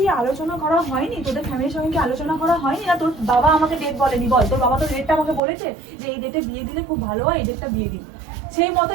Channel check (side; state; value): left; drops out; at 5.4 s